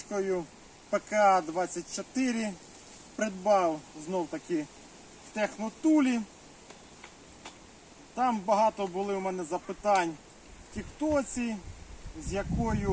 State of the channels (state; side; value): identical; both; correlation 1.00